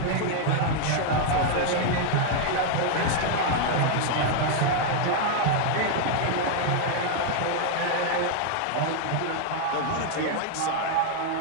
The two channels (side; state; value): both; different; correlation 0.00